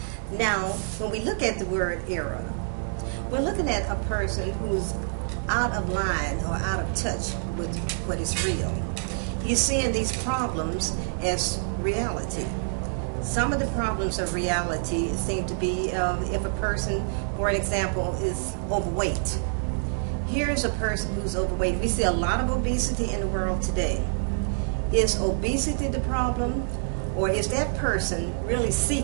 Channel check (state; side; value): silent; left; 60 dB below the other